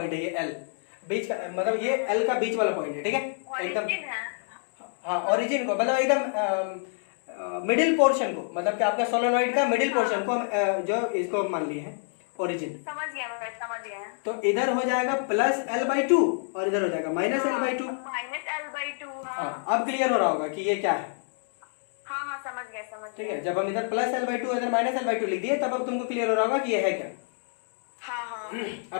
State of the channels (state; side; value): silent; right; 60 dB below the other